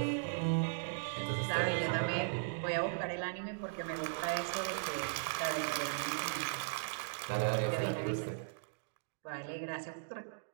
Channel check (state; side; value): silent; left; digital silence